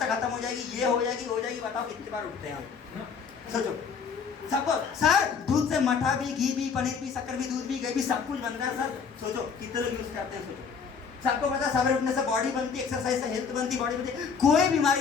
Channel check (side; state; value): right; quieter; 6.0 dB